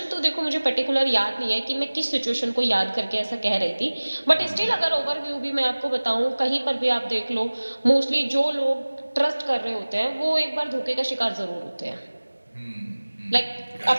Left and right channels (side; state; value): both; inverted; correlation -1.00